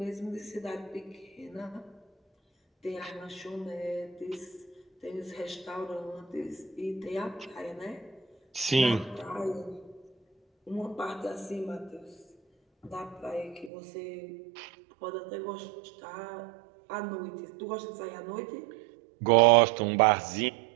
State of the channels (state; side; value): drops out; left; at 13.7 s